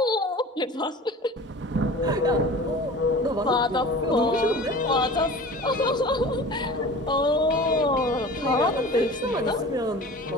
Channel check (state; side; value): normal; both; correlation 0.39